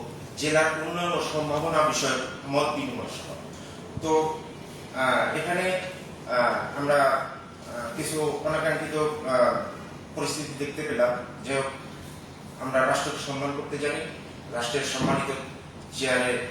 জেলার উন্নয়ন ও সম্ভাবনা বিষয়ক মত বিনিময় সভা। তো এখানে আমরা কিছু অনাকাঙ্ক্ষিত পরিস্থিতি দেখতে পেলাম যে আমরা রাষ্ট্রকে সম্মান করতে জানি, রাষ্ট্রের সম্মানিত চেয়ারে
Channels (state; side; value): identical; both; correlation 1.00